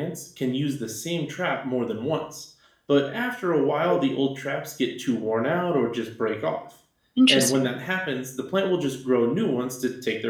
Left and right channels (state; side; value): identical; both; correlation 1.00